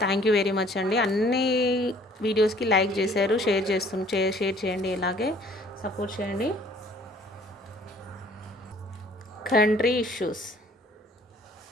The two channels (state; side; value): normal; both; correlation 0.56